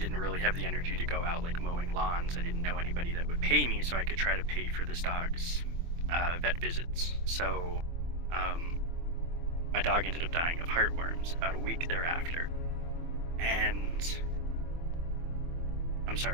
really have the energy to go out like mowing lawns. I didn't know anybody that would pay me, so I could try to pay for this dog's vet visits. So my dog ended up dying of heartworms about a week thereafter. And I'm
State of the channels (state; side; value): late; left; 24 ms